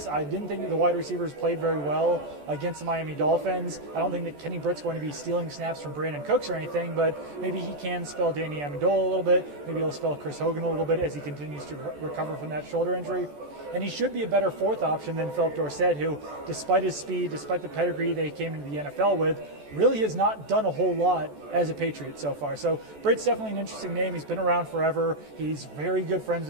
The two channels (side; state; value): left; late; 14 ms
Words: I didn't think that the wide receivers played very well against the Miami Dolphins. I don't think that Kenny Britt's going to be stealing snaps from Brandon Cooks or anything, but maybe he can spell Danny Amendola a little bit. Maybe he'll spell Chris Hogan a little bit as he continues to recover from that shoulder injury. And he should be a better 4th option than Philip Dorsett, who, despite his speed, despite the pedigree they came into the NFL with, really has not done a whole lot as a Patriot so far. So Britt's definitely an interesting name. He's been around forever. He's very good friends